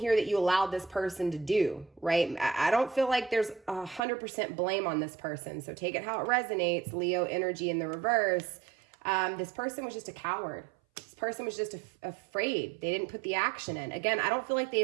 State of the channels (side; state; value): left; drops out; at 4.0 s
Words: that you allowed this person to do, right? I don't feel like there's 100% blame on this person. So take it how it resonates. Leo energy in the reverse. This person was just a coward. This person was just afraid. They didn't put the action in. Again, I don't feel like they